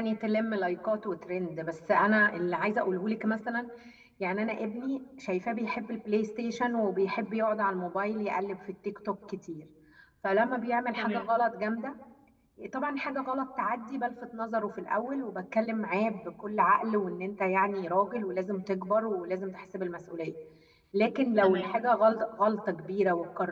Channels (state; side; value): identical; both; correlation 1.00